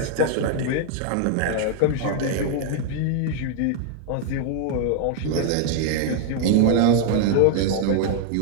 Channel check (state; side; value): different; both; correlation 0.00